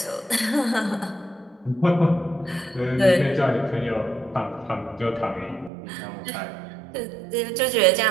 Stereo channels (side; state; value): left; drops out; at 5.7 s